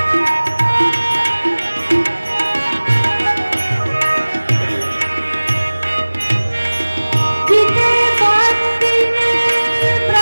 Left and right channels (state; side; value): inverted; both; correlation -1.00